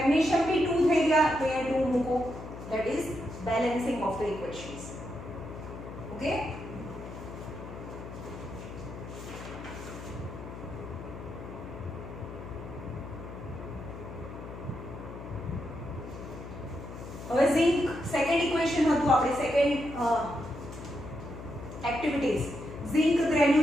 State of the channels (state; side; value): noise; left; hum, 11 dB below the sound